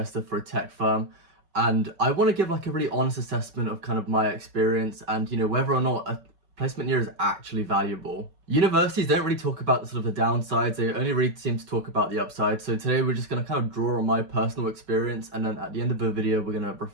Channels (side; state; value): left; late; 5.3 ms